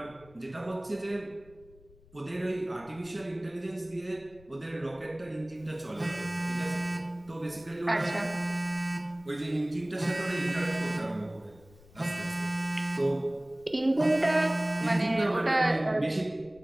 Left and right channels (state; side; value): noise; left; rumble, 25 dB below the sound